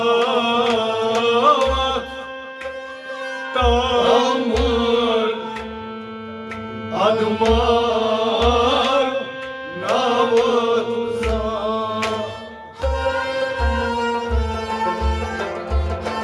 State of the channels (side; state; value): both; identical; correlation 1.00